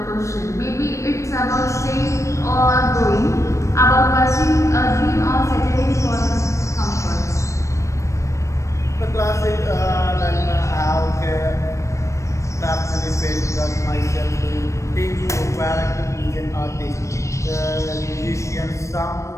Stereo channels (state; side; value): late; right; 0.15 ms